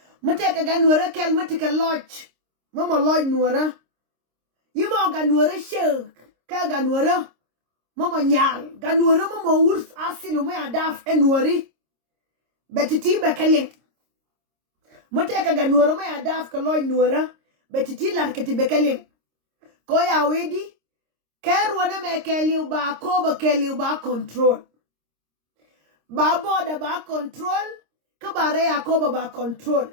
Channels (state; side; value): late; left; 26 ms